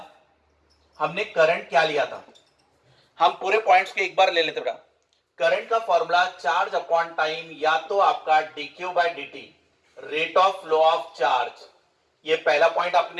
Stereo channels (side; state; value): both; identical; correlation 1.00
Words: हमने करंट क्या लिया था, हम पूरे पॉइंट्स के एक बार ले लेते बेटा। करंट का फॉर्मूला चार्ज अपॉन टाइम, या तो आपका dq by dt, rate of flow of charge. ये पहला पॉइंट